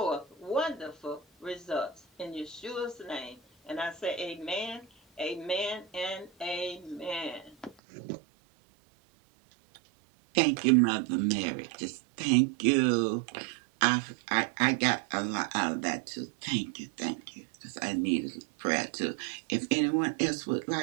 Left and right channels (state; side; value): drops out; left; at 7.8 s